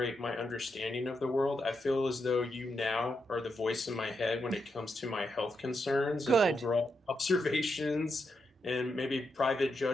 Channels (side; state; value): both; normal; correlation 0.84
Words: my understanding of the world, I feel as though you now are the voice in my head when it comes to my health concerns and Good. overall observations and maybe private